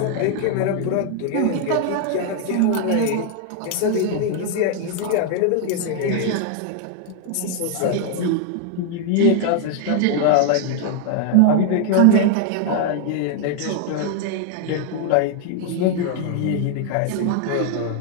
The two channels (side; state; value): both; different; correlation 0.00